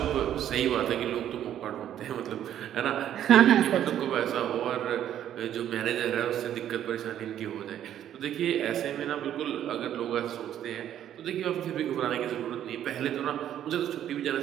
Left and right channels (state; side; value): quieter; left; 10.8 dB